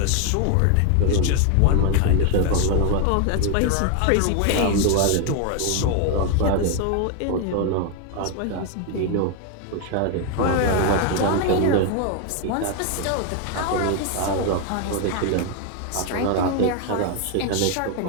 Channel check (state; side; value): different; both; correlation 0.00